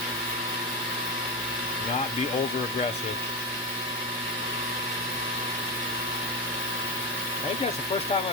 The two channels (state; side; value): normal; both; correlation 0.14